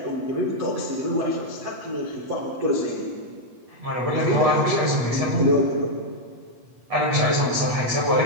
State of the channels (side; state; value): left; late; 8.4 ms